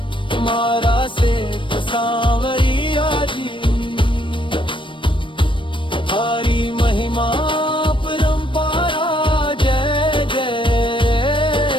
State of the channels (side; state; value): right; late; 0.24 ms